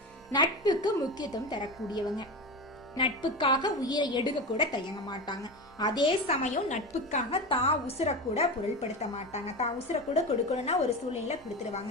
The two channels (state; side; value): normal; both; correlation 0.23